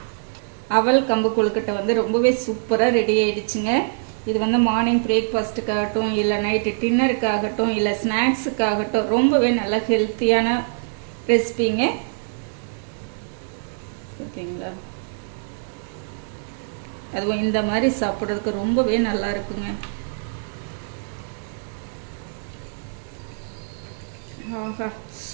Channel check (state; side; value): silent; left; 63 dB below the other